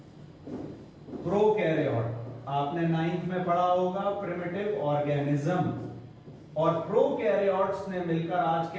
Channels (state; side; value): identical; both; correlation 1.00